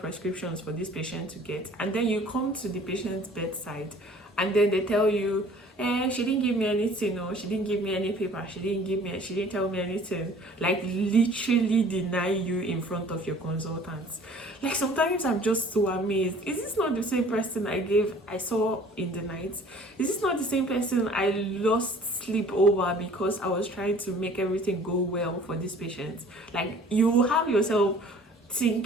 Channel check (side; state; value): both; normal; correlation 0.51